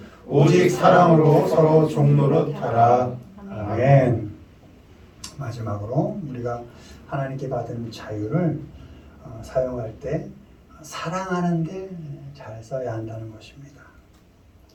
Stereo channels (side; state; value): both; identical; correlation 1.00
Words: 오직 사랑으로 서로 종노릇 하라. 아멘. 마지막으로 우리가 하나님께 받은 자유를 사용할 때 사랑하는데 잘 써야 한다는 것입니다.